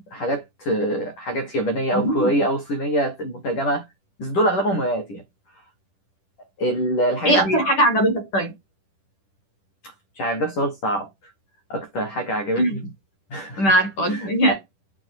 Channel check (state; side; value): late; right; 10 ms